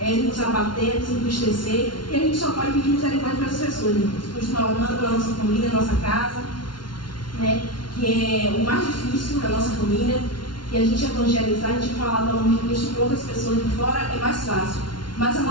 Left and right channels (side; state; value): right; late; 0.71 ms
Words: nos abater, nos entristecer, e a gente só pode pedir misericórdia para as pessoas, irmãos. Continuar orando pela nossa família, nossa casa, né? Que é o mais difícil da nossa família, que a gente evangelizar, a gente falar do nome de Cristo com outras pessoas de fora é mais fácil. Mas a